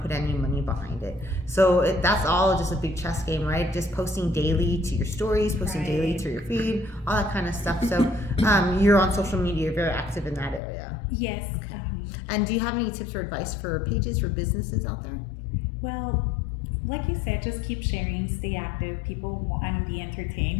put any money behind it. So that's all just a big chess game, right? Just posting daily to your stories, posting daily to your feed, all that kind of stuff. So you're on social media, you're very active in that area. Yes. Okay. And do you have any tips or advice for pages for businesses out there? Well, like you said, just keep sharing, stay active. People want to be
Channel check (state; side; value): drops out; right; at 10.6 s